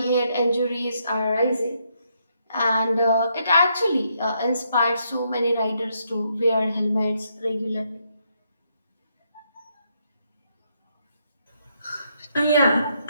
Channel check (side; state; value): both; inverted; correlation -0.76